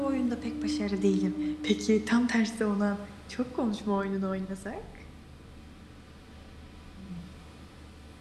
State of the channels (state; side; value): identical; both; correlation 1.00